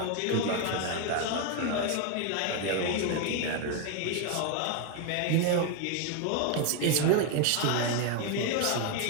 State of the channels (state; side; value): different; both; correlation 0.01